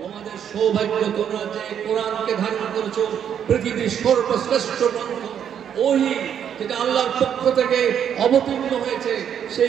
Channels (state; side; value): quieter; left; 8.8 dB